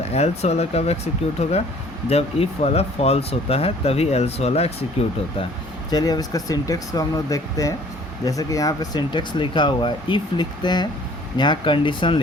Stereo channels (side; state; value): both; normal; correlation 0.54